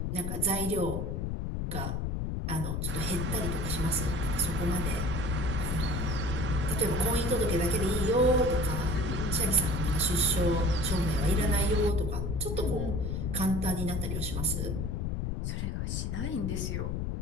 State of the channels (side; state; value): left; noise; rumble, 1 dB below the sound